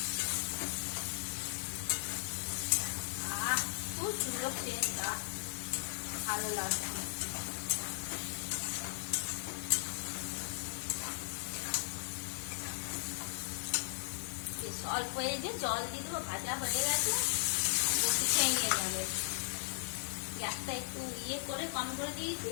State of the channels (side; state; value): right; silent; digital silence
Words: খুব সুন্দর সেন্ট, ভালো লাগে। অল্প এই যে জল দিয়ে দেবো, ভাজা হয়ে গেছে, বেশি খেয়ে নিয়ে যাবে। গ্যাসটা একটু ইয়ে করে কম করে